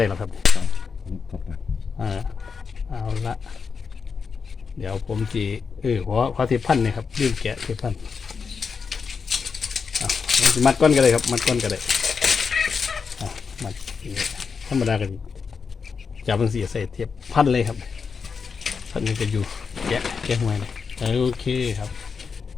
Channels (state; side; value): quieter; right; 5.6 dB